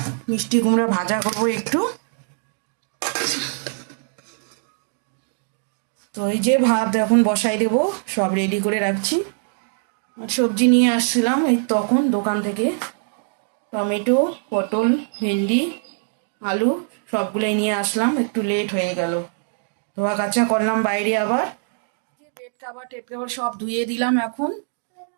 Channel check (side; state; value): left; silent; 63 dB below the other